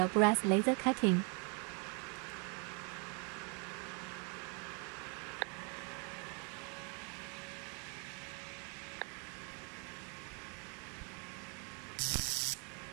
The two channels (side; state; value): left; quieter; 35.8 dB